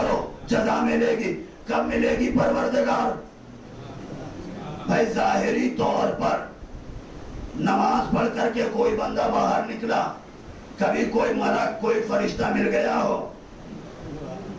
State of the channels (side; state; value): both; identical; correlation 1.00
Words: جزا ملے گی. کب ملے گی پروردگار؟ بھائی ظاہری طور پر نماز پڑھ کر کے کوئی بندہ باہر نکلا, کبھی کوئی ملک کوئی فرشتہ مل گیا ہو؟